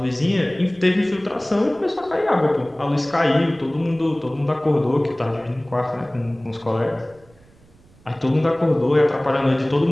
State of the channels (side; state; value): right; noise; rumble, 28 dB below the sound